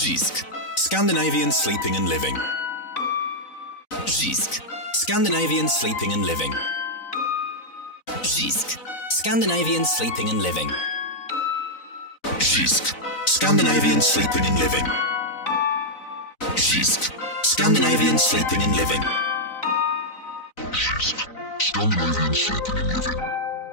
JYSK. Scandinavian sleeping and living. JYSK. Scandinavian sleeping and living. JYSK. Scandinavian sleeping and living. JYSK. Scandinavian sleeping and living. JYSK. Scandinavian sleeping and living. JYSK. Scandinavian sleeping and living.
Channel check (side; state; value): right; late; 4.0 ms